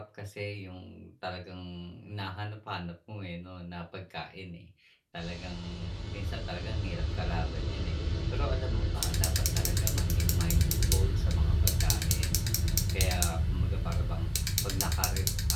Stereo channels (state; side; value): identical; both; correlation 1.00